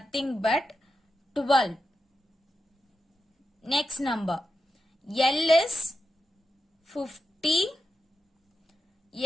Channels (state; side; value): normal; both; correlation 0.89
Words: but 12. Next number. L is 50.